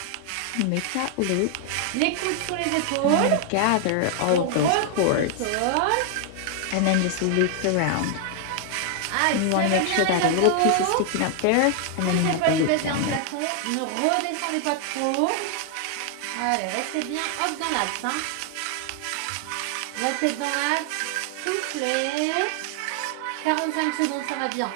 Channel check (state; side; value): different; both; correlation 0.00